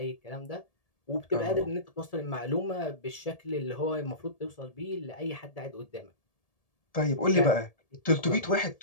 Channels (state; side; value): late; right; 1.7 ms